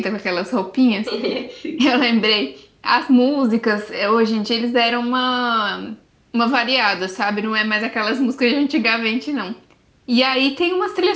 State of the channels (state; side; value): identical; both; correlation 1.00